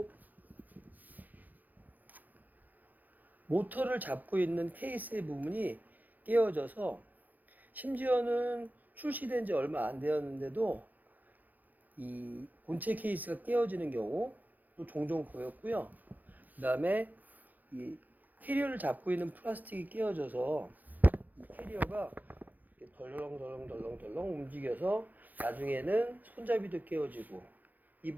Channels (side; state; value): left; late; 0.083 ms